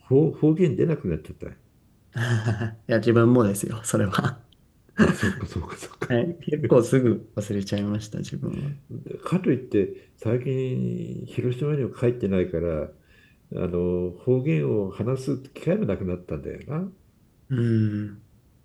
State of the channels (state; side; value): identical; both; correlation 1.00